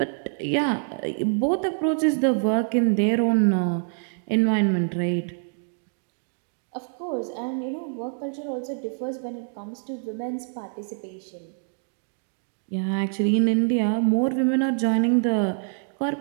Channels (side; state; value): left; silent; 58 dB below the other